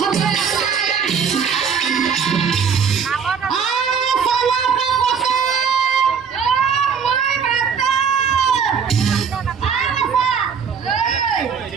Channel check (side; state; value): left; quieter; 6.6 dB